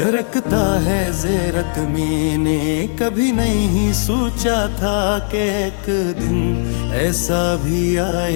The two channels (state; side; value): silent; right; digital silence